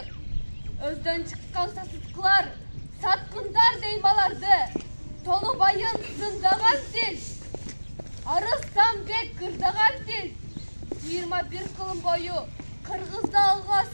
Өздөн чыккан сасыткылар, саткындар деймаларды. Толубайын зындаган тил, Арыстанбек кырдаган тил. 21 кылым бою кыргызды алга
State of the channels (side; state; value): both; inverted; correlation -1.00